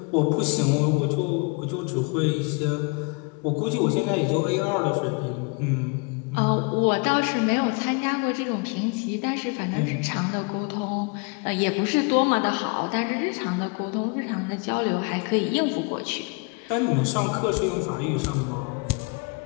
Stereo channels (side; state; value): right; quieter; 31.7 dB